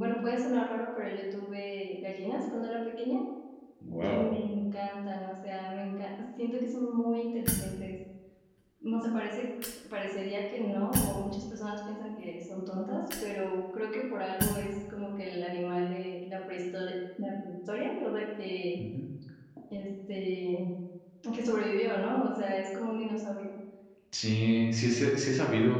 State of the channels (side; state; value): both; identical; correlation 1.00